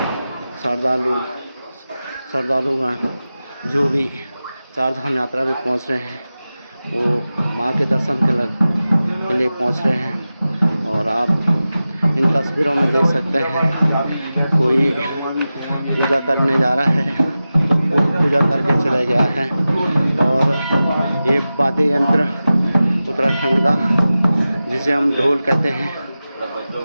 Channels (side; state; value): both; inverted; correlation -0.95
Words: श्रद्धालुगण जो भी चार धाम यात्रा में पहुँच रहे हैं वो माँ के दर्शन के लिए पहुँच रहे हैं। और आप इन तस्वीरों में देख सकते हैं कोई पूजा करने जा रहा है तो कोई पूजा करके चला गया है। और ये वाद्य यंत्र उत्तराखंड का जिसे हम ढोल कहते हैं,